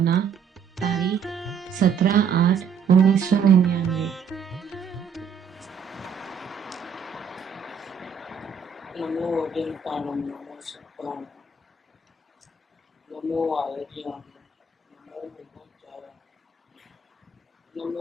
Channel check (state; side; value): quieter; left; 6.2 dB